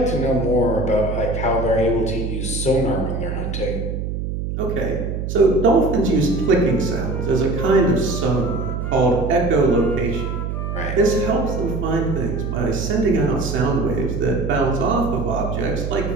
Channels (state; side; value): noise; right; hum, 3 dB below the sound